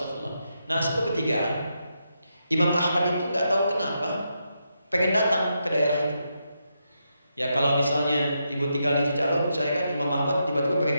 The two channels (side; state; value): both; inverted; correlation -0.83